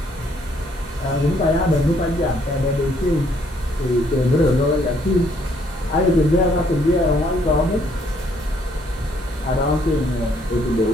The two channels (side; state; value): both; normal; correlation 0.67